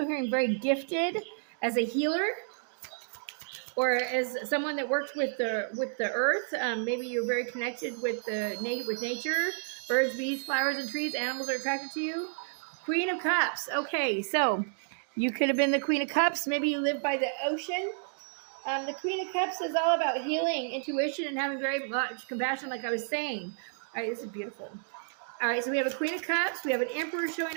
hearing very gifted as a healer, or as someone that worked with the earth. Maybe you're very connected with nature. Birds, bees, flowers, and trees. Animals are attracted to you. Queen of Cups. Okay, so you could have been the Queen of Cups. Maybe you live by the ocean. The Queen of Cups is all about healing, intuition, and having very much compassion, like I was saying. All right, this is beautiful. All right, so we have a Queen of Cups. We have an Emperor showing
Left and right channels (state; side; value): silent; left; digital silence